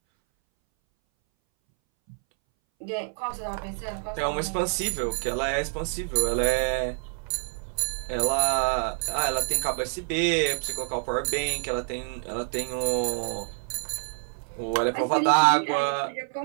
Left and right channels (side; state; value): left; silent; 60 dB below the other